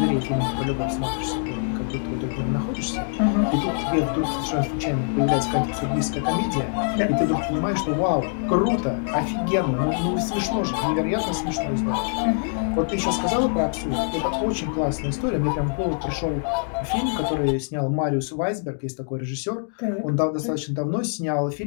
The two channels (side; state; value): right; silent; 62 dB below the other